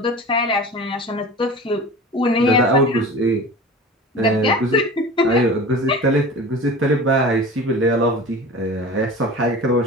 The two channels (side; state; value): both; normal; correlation 0.36